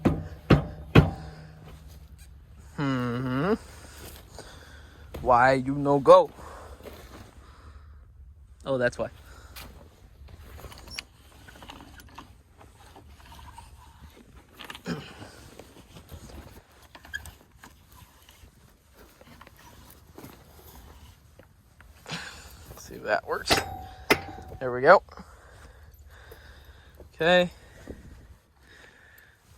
Why you no go? Oh, that's why. See if that works. There we go. Okay.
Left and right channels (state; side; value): identical; both; correlation 1.00